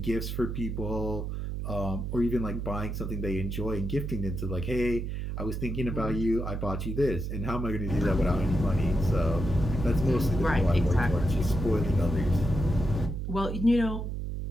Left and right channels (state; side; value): noise; right; hum, 4 dB below the sound